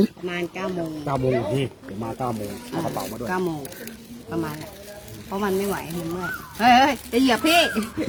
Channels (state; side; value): identical; both; correlation 1.00